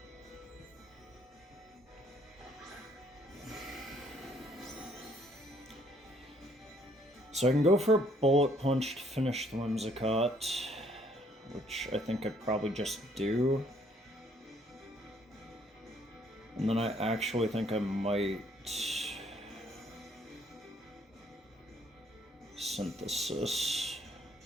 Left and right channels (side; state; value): both; normal; correlation 0.65